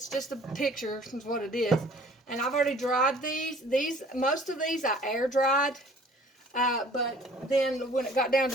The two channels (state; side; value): normal; both; correlation 0.52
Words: just a picture is what it is. And I've already dried these. Most of these I air dried. But then when it got down